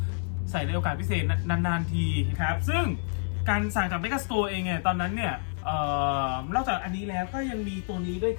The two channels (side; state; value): right; silent; 59 dB below the other